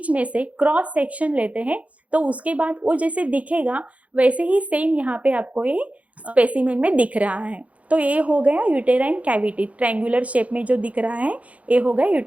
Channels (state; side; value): late; left; 0.066 ms